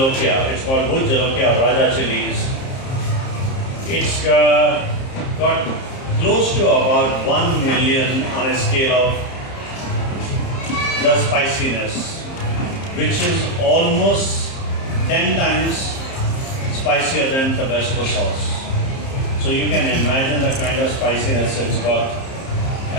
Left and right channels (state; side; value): late; right; 30 ms